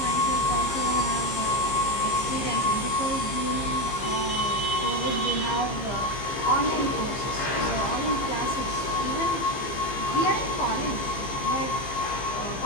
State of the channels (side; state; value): right; late; 15 ms